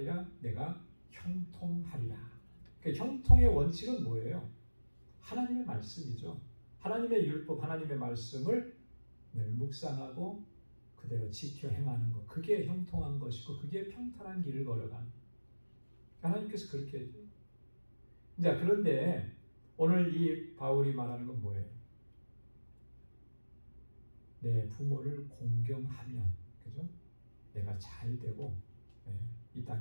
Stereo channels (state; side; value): inverted; both; correlation -1.00